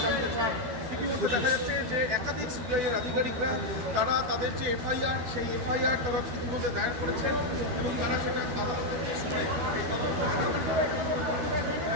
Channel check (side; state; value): left; late; 12 ms